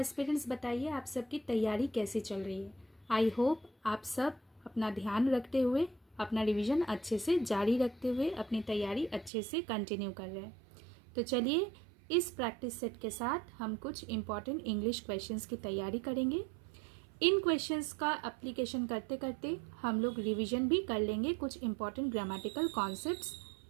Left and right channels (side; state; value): left; drops out; at 9.3 s